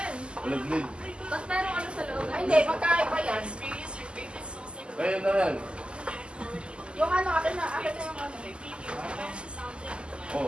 Walang lead. Ba't meron ano sa loob? Ay, hindi. Magkaiba yan. Kaya na yan. Yung ano, akin na yung ano. Oh,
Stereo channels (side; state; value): left; late; 0.051 ms